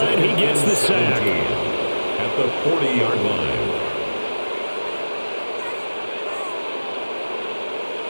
He gets the sack. At the 40-yard line.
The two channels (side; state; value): both; inverted; correlation -1.00